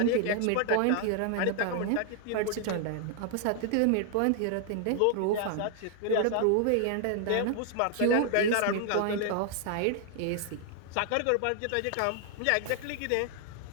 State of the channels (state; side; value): different; both; correlation 0.00